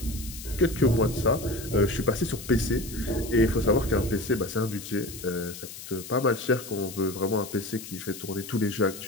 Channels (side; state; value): left; noise; hiss, 12 dB below the sound